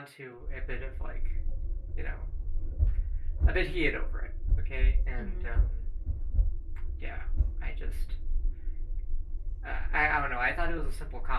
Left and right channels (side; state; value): both; identical; correlation 1.00